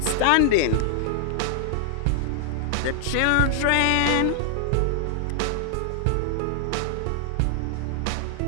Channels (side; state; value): both; different; correlation -0.01